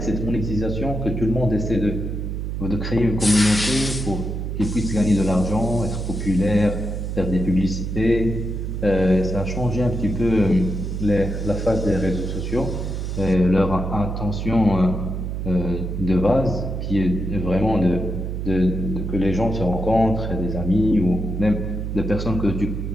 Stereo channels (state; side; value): noise; right; hum, 4 dB below the sound